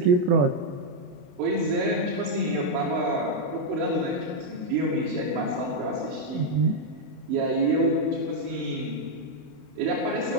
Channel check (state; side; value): late; left; 28 ms